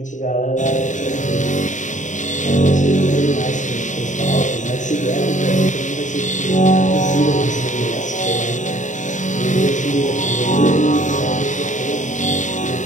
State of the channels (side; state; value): right; late; 0.36 ms